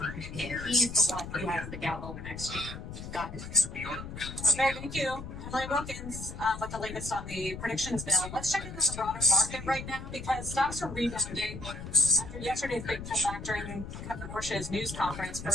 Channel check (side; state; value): left; noise; rumble, 9 dB below the sound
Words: and he's the one who has the gavel next year. Got it. Okay, thank you. Emily Wilkins with the latest on the predictions bill. Let's check into the broader market right now because stocks are rebounding after yesterday's big pullback during Kevin Bush's news conference